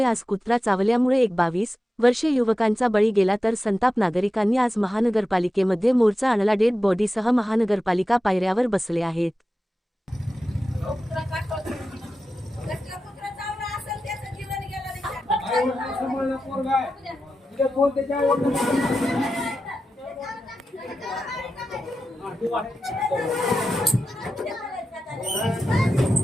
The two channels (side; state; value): both; normal; correlation 0.92